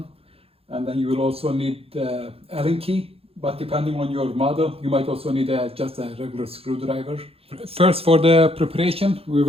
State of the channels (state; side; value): late; left; 0.28 ms